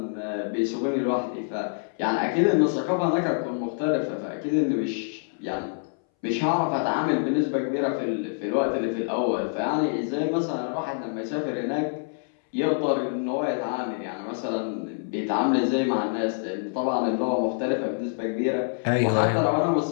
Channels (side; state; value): right; silent; 61 dB below the other